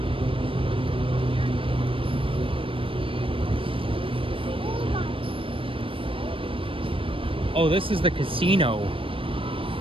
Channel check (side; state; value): left; late; 0.26 ms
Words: Oh, this is the casino.